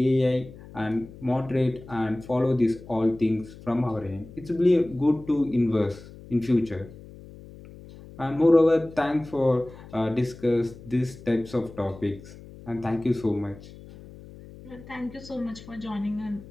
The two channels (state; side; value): noise; left; hum, 18 dB below the sound